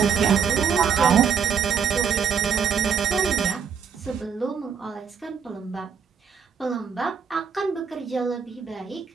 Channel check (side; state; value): left; quieter; 6.7 dB